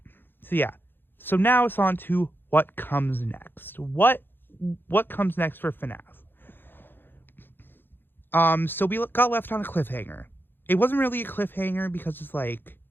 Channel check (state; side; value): late; right; 0.099 ms